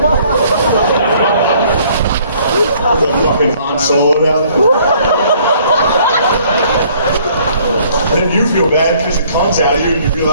The fucking Han Solo down there. And then you feel bad because it comes out of you and you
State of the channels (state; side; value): inverted; both; correlation -0.60